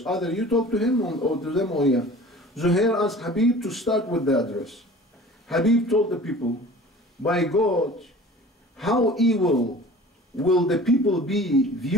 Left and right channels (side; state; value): both; normal; correlation 0.43